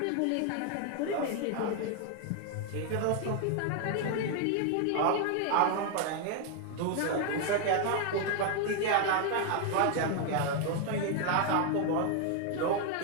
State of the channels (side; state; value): both; different; correlation 0.01